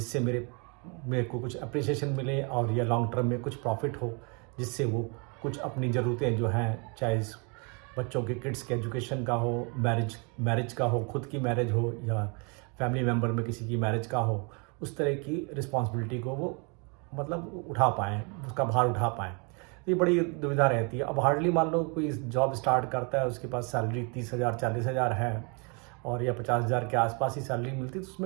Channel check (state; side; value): quieter; left; 33.4 dB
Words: मेरे मेरे को कुछ अप्रिसिएशन मिले और या लॉन्ग टर्म में कुछ प्रॉफिट हो, जिससे वो कुछ अपनी ज़रूरतें जो हैं, चाहे बच्चों के किड्स के एजुकेशन का हो, मैरिज का हो, खुद की मैरिज हो या फैमिली मेम्बर में किसी की मैरिज का हो, उस तरह की रिस्पॉन्सिबिलिटी को वो मतलब उठा पाएँ, उसका भार उठा पाएँ। तो ये बड़ी दुविधा रहती है। अब हार्डली मान लो कोई जॉब स्टार्ट करता है, उसके पास सैलरी 30,000 40,000 है और या 50,000 के आसपास ही सैलरी मिलती है, तो